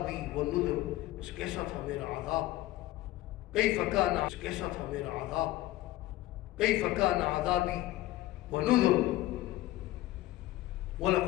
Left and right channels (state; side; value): quieter; right; 16.2 dB